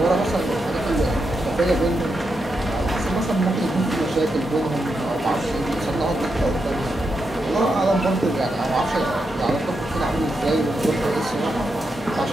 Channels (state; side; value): normal; both; correlation 0.85